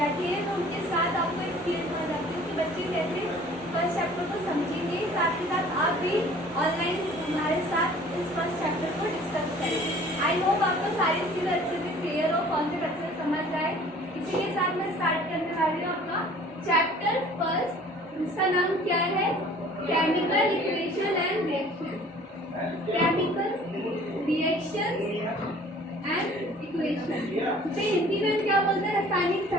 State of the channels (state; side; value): normal; both; correlation 0.50